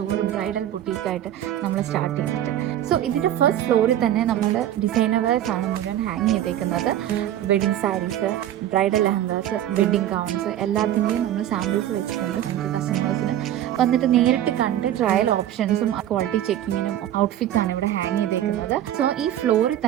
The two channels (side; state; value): left; quieter; 11.9 dB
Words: ബ്രൈഡൽ ബുട്ടീക്കായിട്ട് നമ്മൾ സ്റ്റാർട്ട് ചെയ്തിട്ട്. സോ ഇതിൻ്റെ ഫസ്റ്റ് ഫ്ലോറിൽ തന്നെ നമ്മുടെ ഡിസൈനേഴ്സ് ആണ് മുഴുവൻ ഹാങ് ചെയ്തേക്കുന്നത്. Wedding sarees, bridal lehengas, wedding gowns എല്ലാത്തിൻ്റെയും നമ്മൾ സാമ്പിൾസ് വെച്ചിട്ടുണ്ട്. നമുക്ക് കസ്റ്റമേഴ്സിന് വന്നിട്ട് നേരിട്ട് കണ്ട് ട്രയൽ ഓപ്ഷൻസും ക്വാളിറ്റി ചെക്കിങ്ങിനും ഔട്ട്ഫിറ്റ്സ് ആണ് ഇവിടെ ഹാങ് ചെയ്തേക്കുന്നത്. സോ ഈ ഫ്ലോറിൽ